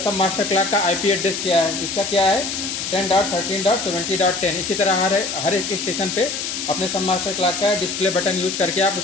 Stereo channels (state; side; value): noise; left; hiss, 4 dB below the sound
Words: सब मास्टर क्लॉक का आईपी एड्रेस क्या है, इसका क्या है 10.13.70.10। इसी तरह हर एक स्टेशन पे अपने सब मास्टर क्लॉक का डिस्प्ले बटन यूज करके आप